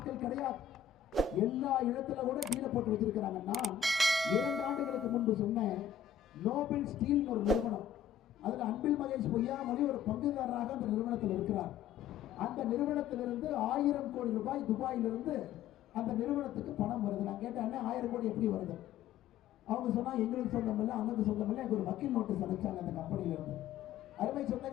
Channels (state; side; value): quieter; right; 8.9 dB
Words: கிடையாது. எல்லா இடத்துல கூட டீல போட்டு வச்சிருக்கிறாங்க. நான் 2 ஆண்டுகளுக்கு முன்பு சொன்னேன், நோபல் ஸ்டீல் ஒரு நிறுவனம், அதுல அன்பில் மகேஷ் பொய்யாமொழி ஒரு பங்குதாரராக அந்த நிறுவனத்தில் இருக்கிறார். அந்த நிறுவனத்திலிருந்து 1000 கோடி ரூபாய் துபாயிலிருந்து அந்த நிறுவனத்துக்கு பணம் வருது. நான் கேட்டேன், 1000 கோடி எப்படி வருது? அவங்க சொன்னா எங்களுக்கு சொந்தம் இல்லை, அண்ணனுக்கு சொந்தம் இல்லை. எனக்கு ஒரு வக்கீல் நோட்டீஸ் அனுப்பிச்சாங்க அந்த கம்பெனில இருந்து. அருமை